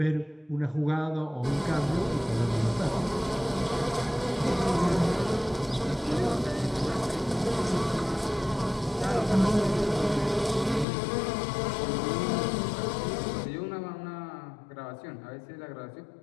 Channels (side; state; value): right; drops out; at 10.9 s